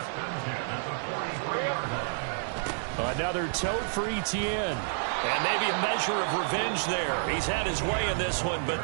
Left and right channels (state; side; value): silent; left; digital silence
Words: Another tote for Etienne. And maybe a measure of revenge there. He's had his way in this one, but